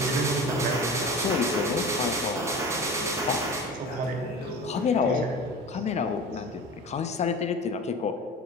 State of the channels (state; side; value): normal; both; correlation 0.34